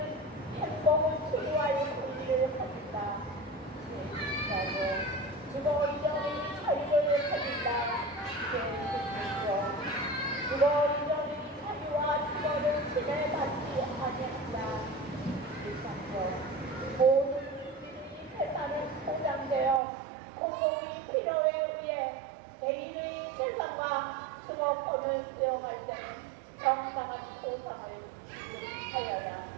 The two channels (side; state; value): left; drops out; at 19.8 s